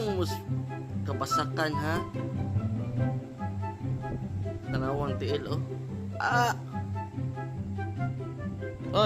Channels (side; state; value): both; identical; correlation 1.00